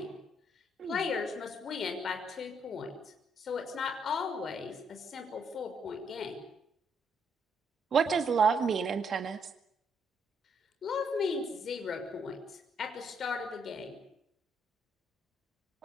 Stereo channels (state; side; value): normal; both; correlation 0.73